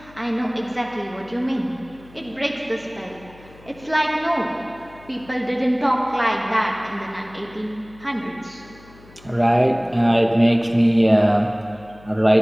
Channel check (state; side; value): noise; left; hum, 24 dB below the sound